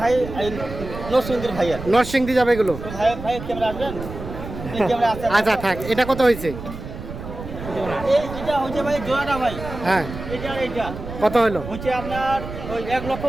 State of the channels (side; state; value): right; noise; rumble, 10 dB below the sound